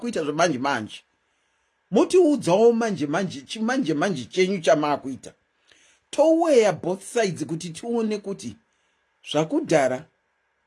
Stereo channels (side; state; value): both; identical; correlation 1.00